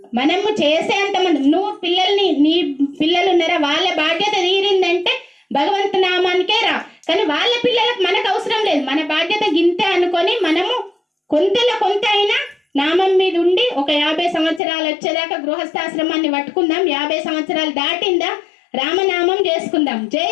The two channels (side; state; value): right; drops out; at 14.6 s